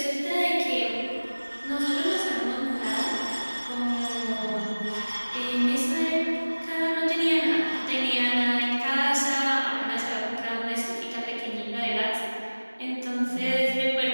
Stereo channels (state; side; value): inverted; both; correlation -1.00